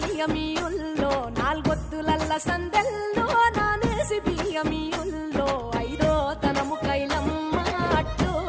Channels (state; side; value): identical; both; correlation 1.00